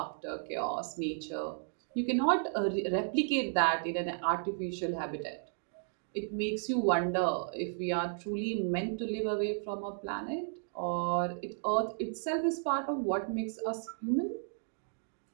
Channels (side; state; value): left; silent; digital silence